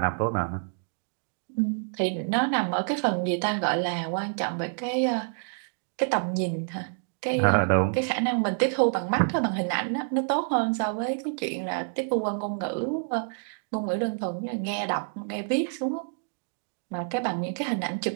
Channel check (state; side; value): silent; left; digital silence